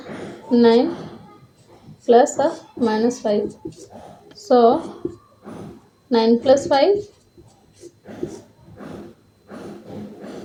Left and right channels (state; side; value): identical; both; correlation 1.00